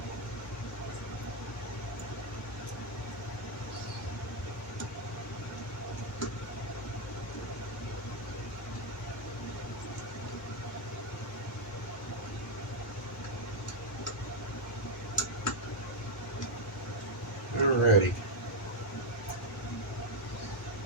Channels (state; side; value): normal; both; correlation 0.02